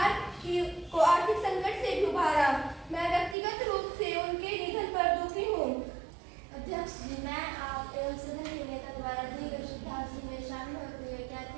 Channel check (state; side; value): drops out; left; at 3.4 s